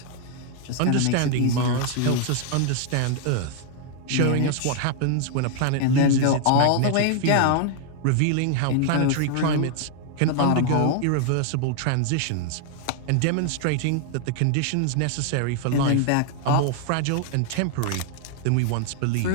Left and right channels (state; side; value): different; both; correlation 0.00